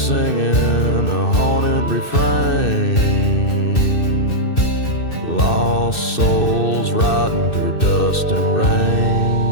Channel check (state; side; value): late; right; 2.6 ms